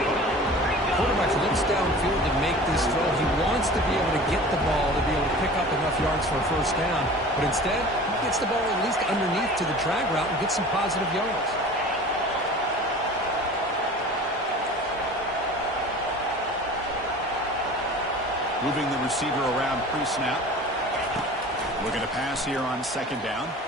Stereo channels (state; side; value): normal; both; correlation 0.40